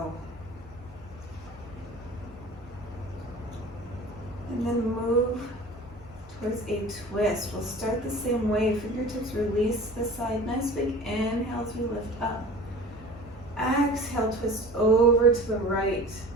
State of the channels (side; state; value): right; noise; hum, 23 dB below the sound